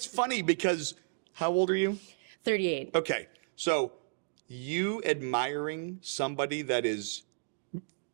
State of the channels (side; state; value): left; silent; digital silence